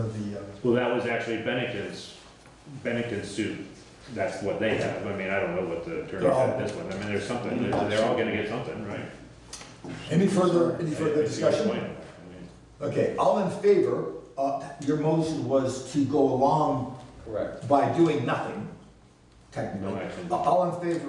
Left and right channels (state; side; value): identical; both; correlation 1.00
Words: the... Well, that was actually Bennington's suit. That's what they have. I mean, I don't know what the attorney said this one. I mean, there's something. They're all going to get something, right? Any further discussion? Okay, all in favor, your motion was to go along by doing nothing, technically. No, all in